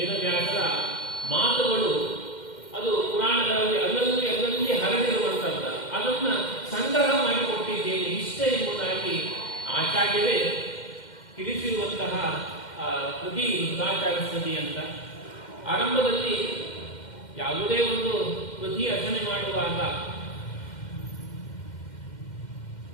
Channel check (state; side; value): late; right; 2.1 ms